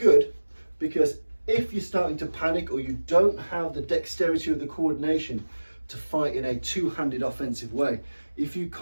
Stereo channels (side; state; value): both; inverted; correlation -1.00